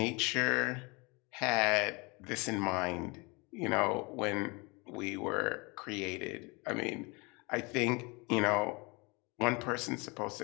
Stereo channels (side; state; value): right; quieter; 27.8 dB